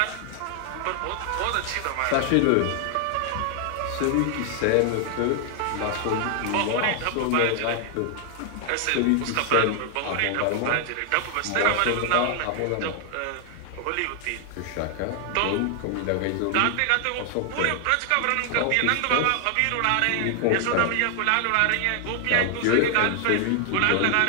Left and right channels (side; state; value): both; different; correlation 0.00